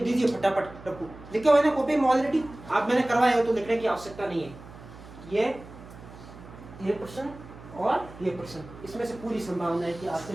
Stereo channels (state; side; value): noise; right; hum, 17 dB below the sound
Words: दीजिए फटाफट। रखो लिखे हुए ना कॉपी में ऑलरेडी, आप मैंने करवाया हो तो लिखने की आवश्यकता नहीं है। ये प्रश्न और ये प्रश्न, इसमें से पूरी संभावना है कि आपसे